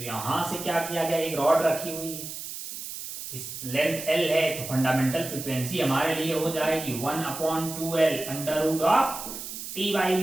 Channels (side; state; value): right; noise; hiss, 9 dB below the sound